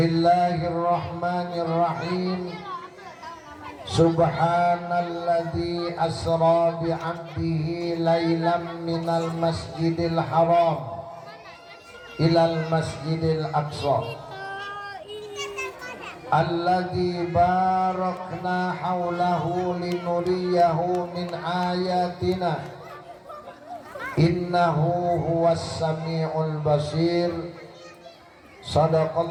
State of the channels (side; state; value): both; identical; correlation 1.00